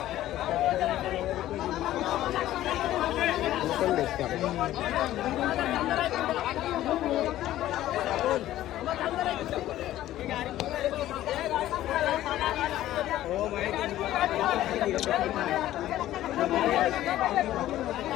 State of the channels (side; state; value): right; quieter; 13.9 dB